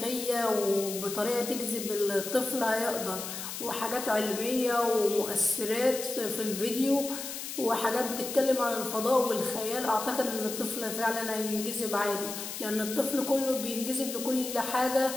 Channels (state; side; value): noise; left; hiss, 7 dB below the sound